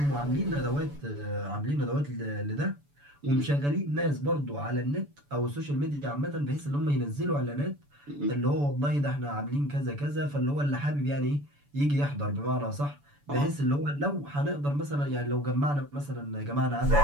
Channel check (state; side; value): late; left; 7.0 ms